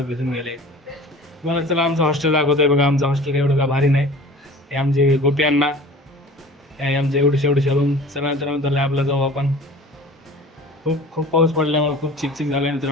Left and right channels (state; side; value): normal; both; correlation 0.43